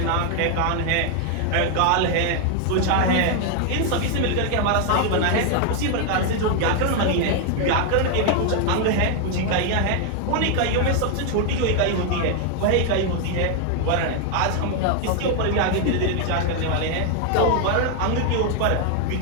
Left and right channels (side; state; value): both; different; correlation 0.01